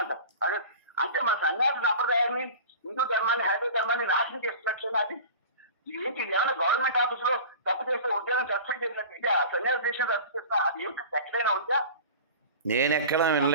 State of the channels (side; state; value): both; inverted; correlation -0.37